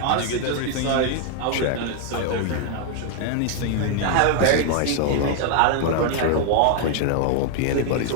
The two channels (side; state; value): both; different; correlation 0.00